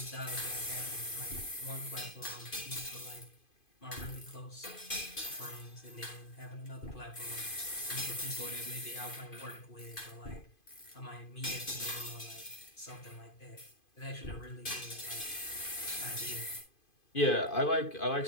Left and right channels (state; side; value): late; right; 2.5 ms